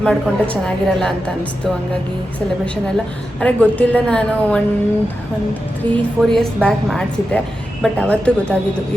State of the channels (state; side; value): normal; both; correlation 0.90